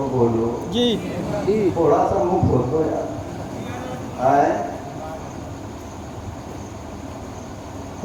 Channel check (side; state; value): both; identical; correlation 1.00